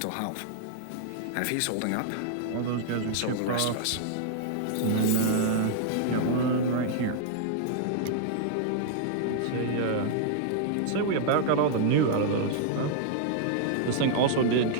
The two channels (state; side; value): different; both; correlation -0.01